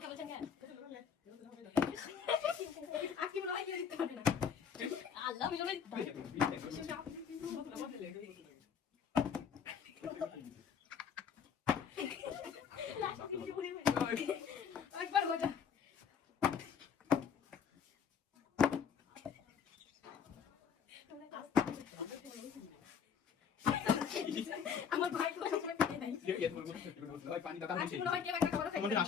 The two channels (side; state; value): right; quieter; 7.2 dB